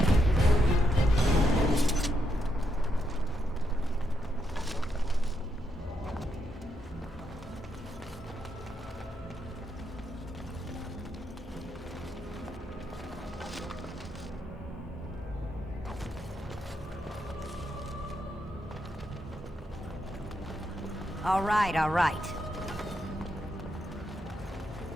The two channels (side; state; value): both; normal; correlation 0.81